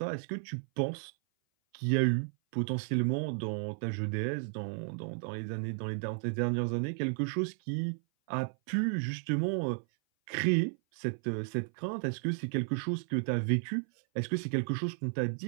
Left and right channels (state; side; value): silent; left; 56 dB below the other